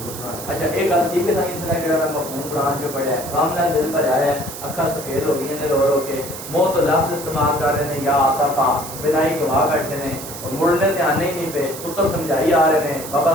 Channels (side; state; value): right; noise; hiss, 11 dB below the sound